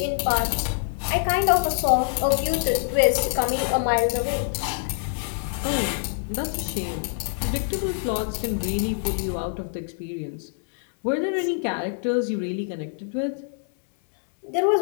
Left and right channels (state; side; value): silent; right; 62 dB below the other